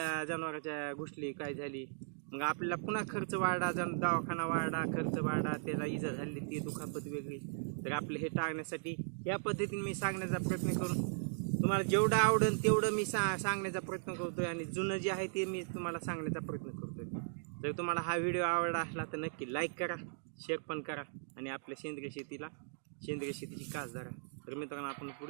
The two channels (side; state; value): left; silent; digital silence